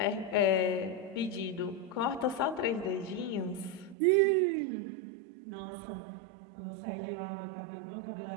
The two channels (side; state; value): left; drops out; at 4.0 s